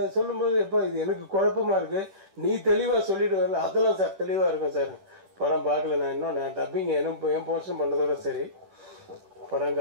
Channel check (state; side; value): late; left; 10 ms